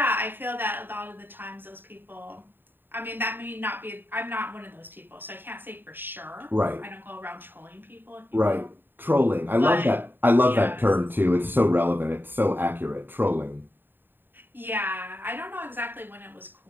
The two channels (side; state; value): left; late; 0.095 ms